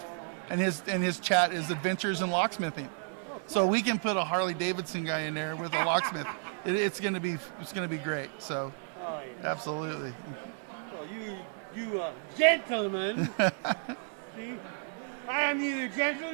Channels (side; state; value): left; silent; 56 dB below the other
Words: and his chat is Adventures in Locksmithing. So we can put a Harley Davidson guy in there with a locksmith. It's gonna be great. So Oh, yeah. absolutely. Well, you gentlemen. See, I am neither gentle